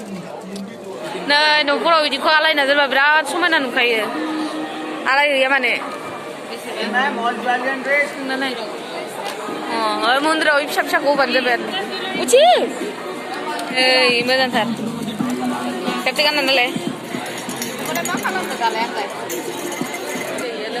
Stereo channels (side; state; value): both; identical; correlation 1.00